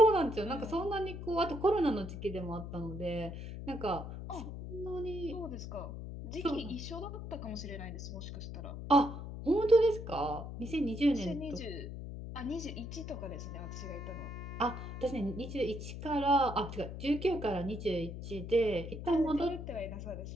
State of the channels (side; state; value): left; noise; hum, 8 dB below the sound